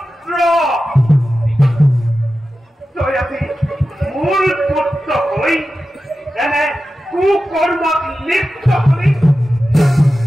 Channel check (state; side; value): normal; both; correlation 0.93